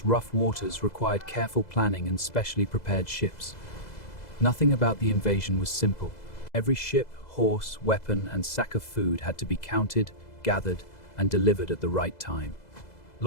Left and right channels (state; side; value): late; right; 2.0 ms